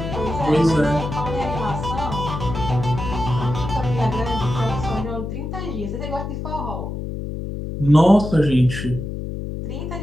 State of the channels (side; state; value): left; noise; hum, 6 dB below the sound